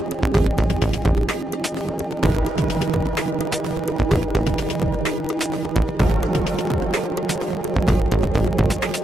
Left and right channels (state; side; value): normal; both; correlation 0.84